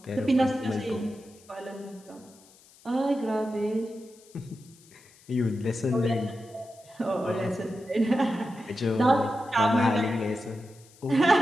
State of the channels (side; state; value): left; noise; hiss, 26 dB below the sound